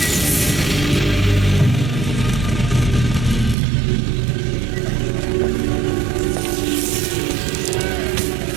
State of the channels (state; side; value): drops out; left; at 3.6 s